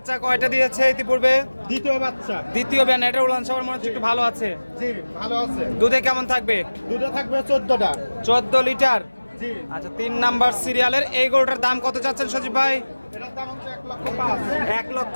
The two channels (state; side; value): inverted; both; correlation -1.00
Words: কয়টা দিয়েছে ইতিপূর্বে? দ্বিতীয় বাচ্চা। দ্বিতীয় ব্যান। এটার উলান সবার মনে হচ্ছে একটু ভালো আছে। জি, ভালো আছে। দুধে কেমন থাকবে? দুটো থাকবে 14টা। 14 লিটার। জি। আচ্ছা, 3 নাম্বার সিরিয়ালের এই গরুটার দাম কত চাচ্ছেন সজীব ভাই? এটার দাম হচ্ছে 1,05,000।